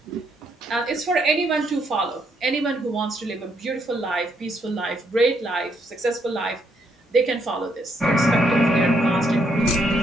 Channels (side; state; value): both; normal; correlation 0.74